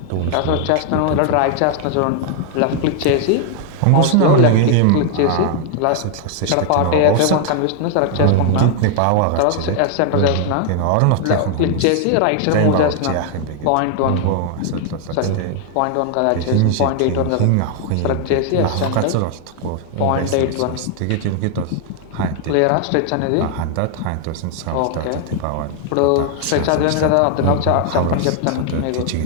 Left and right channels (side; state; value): both; different; correlation 0.00